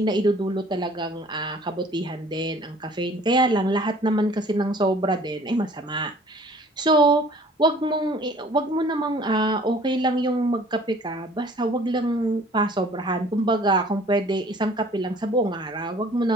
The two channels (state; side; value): normal; both; correlation 0.52